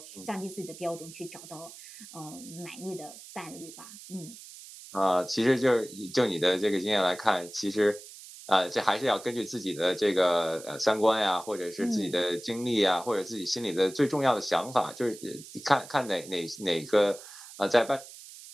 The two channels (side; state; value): right; noise; hiss, 16 dB below the sound